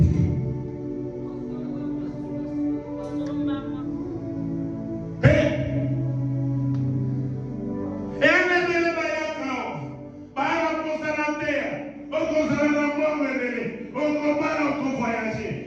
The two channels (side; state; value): both; identical; correlation 1.00